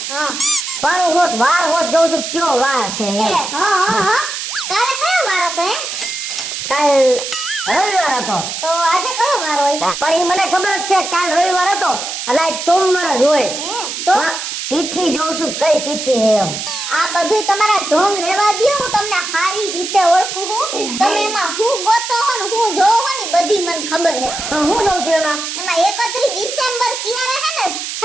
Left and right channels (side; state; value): right; noise; hiss, 5 dB below the sound